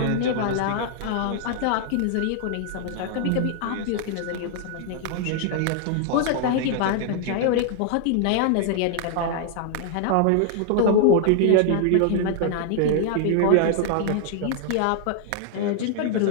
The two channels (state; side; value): different; both; correlation 0.00